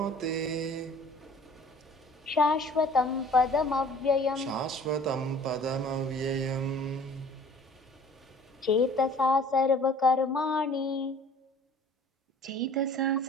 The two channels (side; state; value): both; normal; correlation 0.50